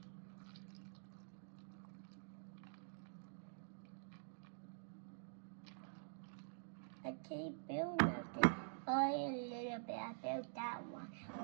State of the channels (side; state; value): left; silent; digital silence